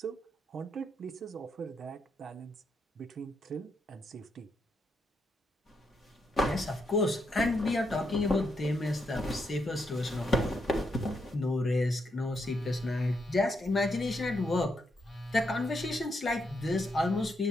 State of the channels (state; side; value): normal; both; correlation 0.80